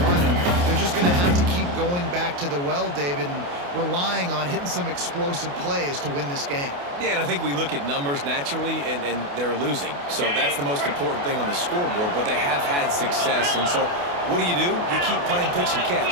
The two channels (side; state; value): left; late; 28 ms